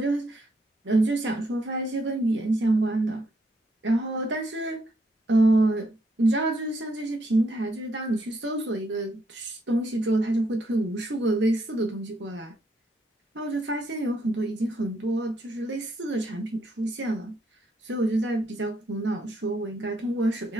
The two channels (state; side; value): normal; both; correlation 0.75